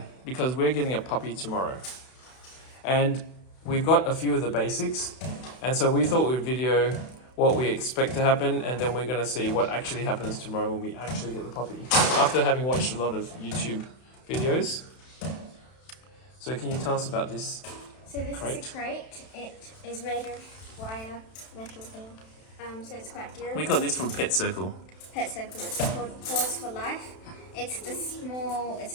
because we're getting a puppy tomorrow. And we've got a few of the basics. And so we thought we'd video what we expect to happen, and then we're going to see what actually happens tomorrow when we actually get the puppy. After having watched a lot of YouTube videos. So can you tell us about this? So this crate? is a crate. It is made of wire, metal thing. So it's quite durable. We got this from Pet Circle. Pet Circle. It's called Paws for Life. It's a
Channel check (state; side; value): late; right; 32 ms